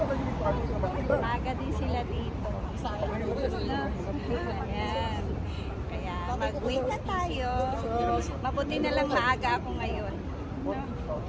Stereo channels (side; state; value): both; identical; correlation 1.00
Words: Maaga din sila dito. No? Ayan. Kaya mag-wait na tayo. Mabuti na lang maaga ako ngayon. No?